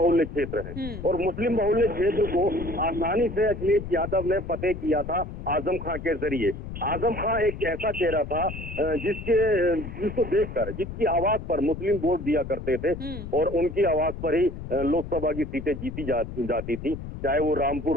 क्षेत्र है और मुस्लिम बहुल्य क्षेत्र को आसानी से अखिलेश यादव ने फतेह किया था आजम खां के जरिए। आजम खां एक ऐसा चेहरा था जिसको देखकर, जिसकी आवाज पर मुस्लिम वोट दिया करते थे और उनकी आवाज पर ही लोकसभा की सीटें जीती जाती थी, चाहे वो रामपुर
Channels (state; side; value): noise; left; rumble, 9 dB below the sound